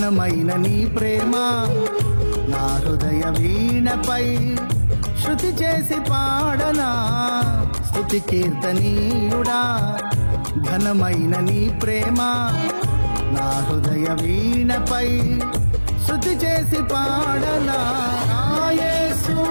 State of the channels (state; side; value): inverted; both; correlation -1.00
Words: నీ ప్రేమ నా హృదయ వీణపై శృతి చేసి పాడనా. స్తుతి కీర్తనీయుడా ఘనమైన నీ ప్రేమ నా హృదయ వీణపై శృతి చేసి పాడనా. యేసు